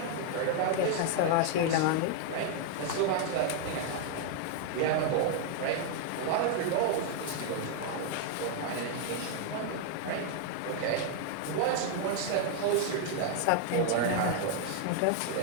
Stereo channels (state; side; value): different; both; correlation 0.00